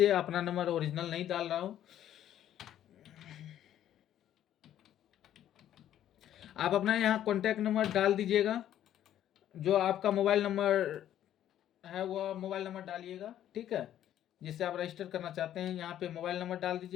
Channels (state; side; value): quieter; right; 11.4 dB